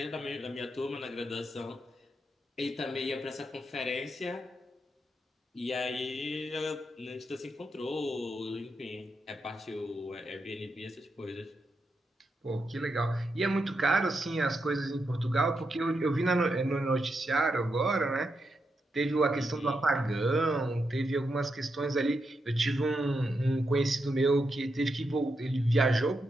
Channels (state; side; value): normal; both; correlation 0.84